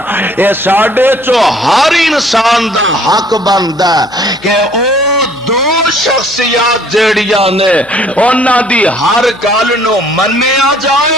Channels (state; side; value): noise; left; hum, 25 dB below the sound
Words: اے ساڈے چو ہر انسان دا حق بندا کہ او دو شخصیات جڑیاں نے انہاں دی ہر گل نو منیا